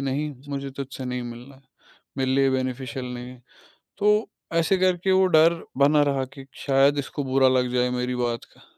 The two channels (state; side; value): identical; both; correlation 1.00